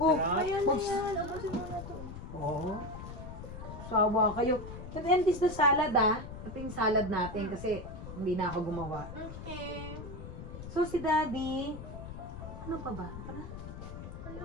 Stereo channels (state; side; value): noise; left; rumble, 10 dB below the sound